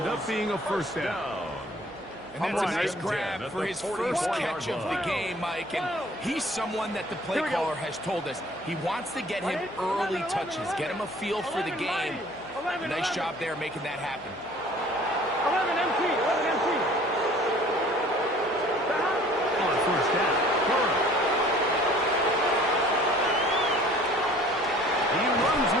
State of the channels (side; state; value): right; noise; hum, 26 dB below the sound